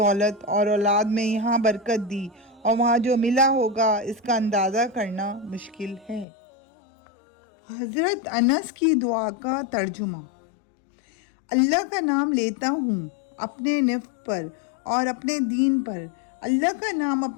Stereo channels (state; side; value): drops out; right; at 6.2 s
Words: اور اولاد میں یہاں برکت دی، اور وہاں جو ملا ہوگا اس کا اندازہ کرنا مشکل ہے۔ حضرت انس کی دعا کا ترجمہ۔ اللہ کا نام لیتا ہوں اپنے نفس پر اور اپنے دین پر، اللہ کا نام